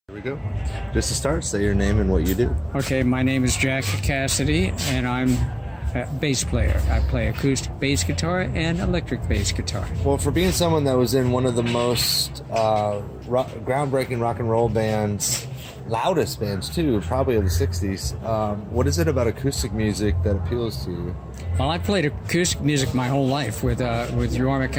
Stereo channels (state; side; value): identical; both; correlation 1.00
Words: Here we go. Just to start, say your name and what you do. Okay, my name is Casady, and I'm a bass player. I play acoustic bass guitar and electric bass guitar. Well, for being someone that was in one of the most groundbreaking rock and roll bands, loudest bands too, probably of the 60s, what is it about acoustic music that appeals to you? Well, I played acoustic music my whole life with Yorma